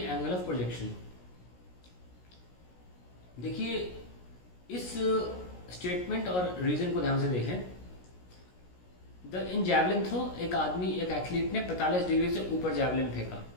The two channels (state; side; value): late; right; 16 ms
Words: of projection. देखिए इस स्टेटमेंट और रीजन को ध्यान से देखें। इन जैवलिन थ्रो एक एथलीट ने 45 डिग्री से ऊपर जैवलिन फेंका।